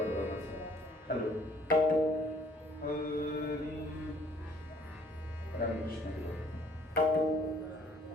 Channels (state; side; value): normal; both; correlation 0.60